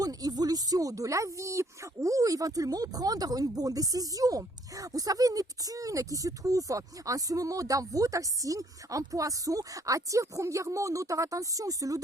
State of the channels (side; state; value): both; normal; correlation 0.64